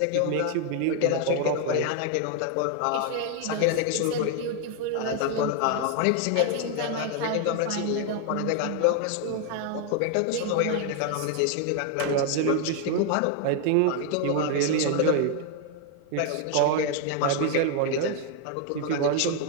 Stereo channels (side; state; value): both; different; correlation 0.00